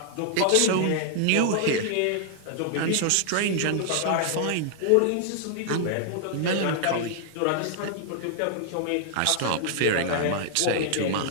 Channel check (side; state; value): both; different; correlation 0.00